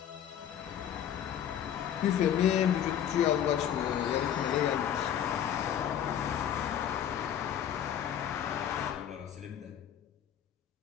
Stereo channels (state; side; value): quieter; right; 9.8 dB